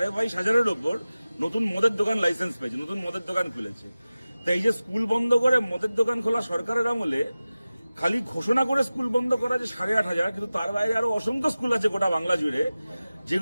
ওপর নতুন মদের দোকান লাইসেন্স পেয়েছে, নতুন মদের দোকান খুলেছে। তাই এই যে স্কুল বন্ধ করে মদের দোকান খোলা সরকারের আমলে খালি ঘোষণা করে স্কুল বন্ধ করা যে 8,500, কিন্তু তার বাইরে আরো অসংখ্য স্কুল আছে গোটা বাংলা জুড়ে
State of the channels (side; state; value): both; inverted; correlation -0.96